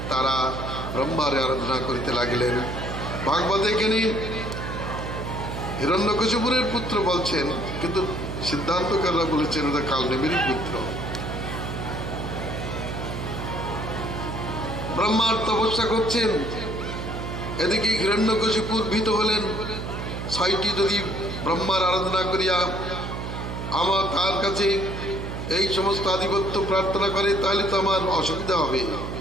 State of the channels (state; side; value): noise; right; hum, 6 dB below the sound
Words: তারা ব্রহ্মার আরাধনা করিতে লাগিলেন। ভাগবতে এখানে হিরণ্যকশিপুরের পুত্র বলছেন, কিন্তু সিদ্ধান্তকাররা বলেছেন ওটা কালনেমির পুত্র। ব্রহ্মার তপস্যা করছেন, এদিকে হিরণ্যকশিপুর ভীত হলেন। 6টি যদি ব্রহ্মার আরাধনা করিয়া আমার তার কাছে এই সমস্ত আধিপত্য প্রার্থনা করে, তাহলে তো আমার অসুবিধা হবে।